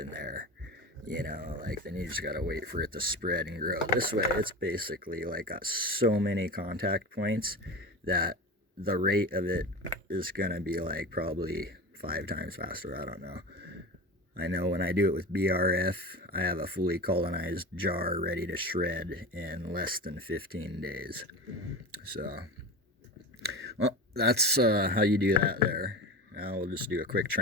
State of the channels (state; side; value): normal; both; correlation 0.29